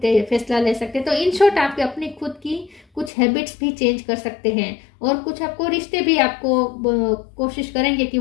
फैसला ले सकते हैं। तो इन शॉर्ट आप अपनी खुद की कुछ हैबिट्स भी चेंज कर सकते हैं, और कुछ आपको रिश्ते भी आपको कोशिश करेंगे कि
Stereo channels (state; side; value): drops out; right; at 3.1 s